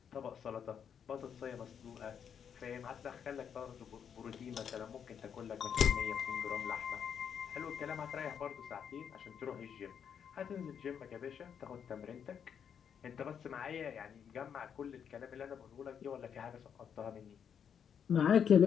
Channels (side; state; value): right; quieter; 7.8 dB